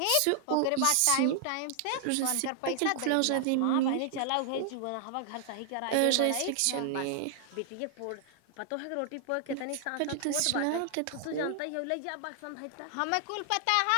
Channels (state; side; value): different; both; correlation 0.00